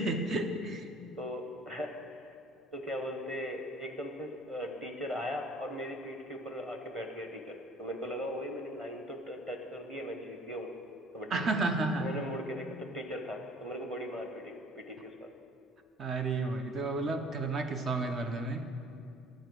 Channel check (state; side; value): normal; both; correlation 0.51